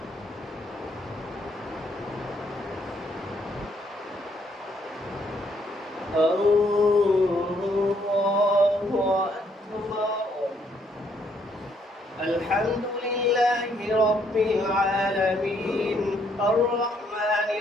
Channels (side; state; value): both; normal; correlation 0.70